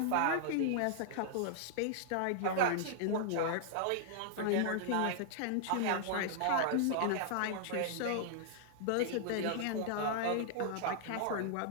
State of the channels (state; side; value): different; both; correlation -0.01